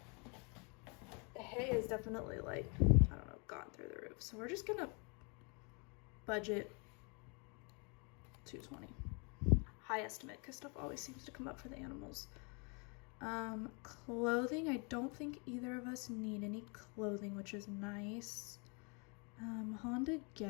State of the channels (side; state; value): right; quieter; 33.9 dB